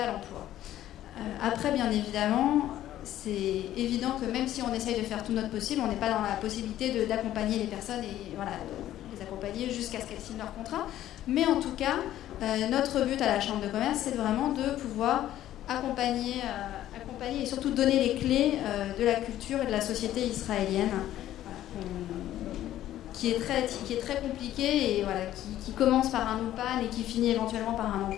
l'emploi. Après, bien évidemment, c'est évident que même si on essaye de faire tout notre possible, on n'est pas dans la possibilité d'accompagner les personnes et les accompagner jusqu'à ce qu'elles signent leur contrat. Mais en tout cas, notre but à la Chambre de commerce, c'est vraiment de pouvoir accompagner et surtout donner les clés de la culture et de la société israélienne, qui est très compliquée et qui commence par un OPAN et qui finit éventuellement par un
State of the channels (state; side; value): quieter; right; 13.0 dB